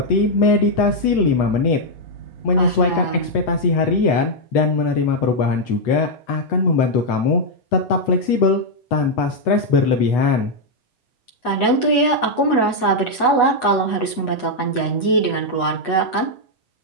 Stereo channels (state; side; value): late; right; 8.1 ms